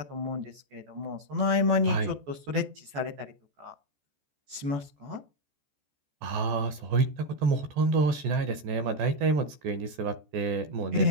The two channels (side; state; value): left; late; 14 ms